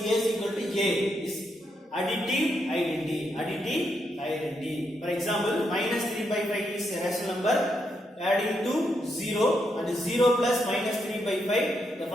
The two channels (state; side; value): normal; both; correlation 0.80